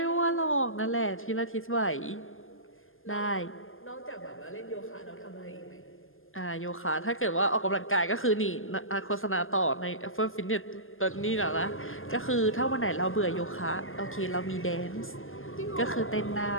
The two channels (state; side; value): late; right; 0.59 ms